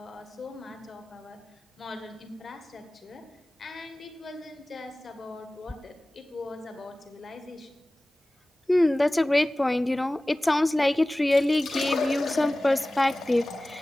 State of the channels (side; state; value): both; normal; correlation 0.98